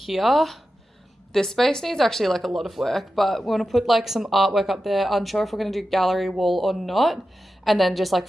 this space needs actually like a lot of work, but we want to put like some artwork up there. Unsure if we're going to do gallery wall or not, and then just like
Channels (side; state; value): both; normal; correlation 0.92